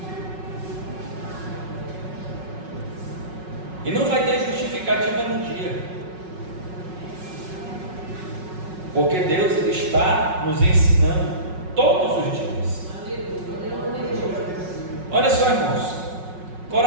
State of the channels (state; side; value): late; left; 5.4 ms